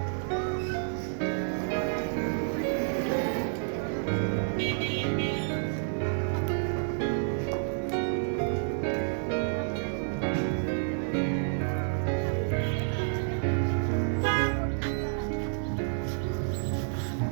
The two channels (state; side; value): silent; left; 58 dB below the other